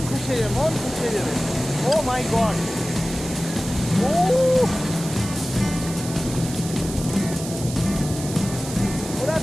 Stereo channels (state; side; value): noise; right; hiss, 11 dB below the sound